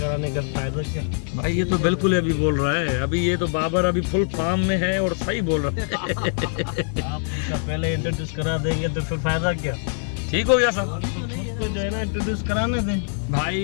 का फायदा क्या भाई? ये तो बिल्कुल अभी बोल रहा है, अभी ये तो बाबर अभी फुल फार्म में है और सही बोल रहा है। आप उनका पहले इंट्रोड्यूस करा देंगे तो फिर फायदा क्या? ठीक हो गया सर, खुद को जो है ना इंट्रोड्यूस कराने दें।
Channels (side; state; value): right; silent; 63 dB below the other